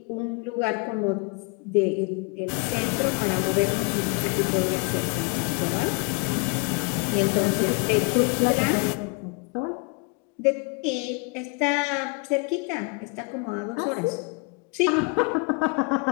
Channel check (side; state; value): right; quieter; 30.9 dB